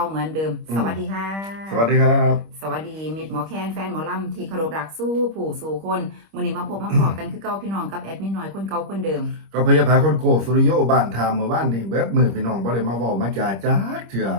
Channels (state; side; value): late; left; 25 ms